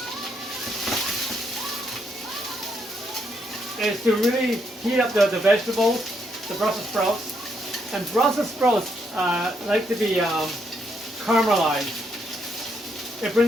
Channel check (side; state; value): both; normal; correlation 0.76